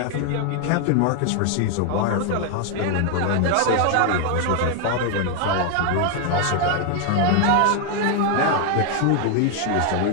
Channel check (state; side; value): different; both; correlation 0.00